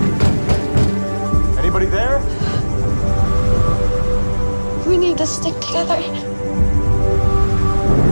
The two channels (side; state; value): both; inverted; correlation -1.00